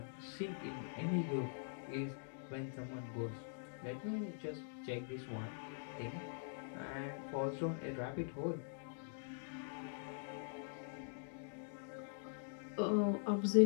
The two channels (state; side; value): silent; right; digital silence